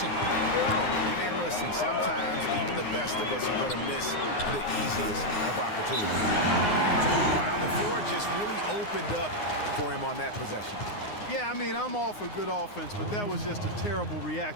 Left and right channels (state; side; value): late; right; 9.7 ms